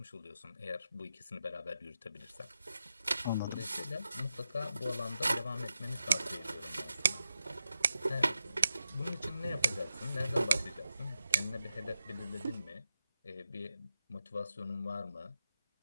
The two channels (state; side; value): inverted; both; correlation -0.89